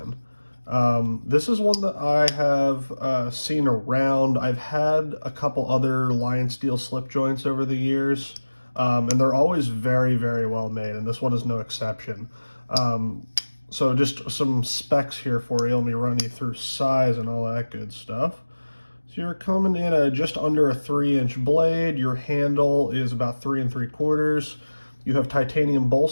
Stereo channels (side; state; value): both; inverted; correlation -1.00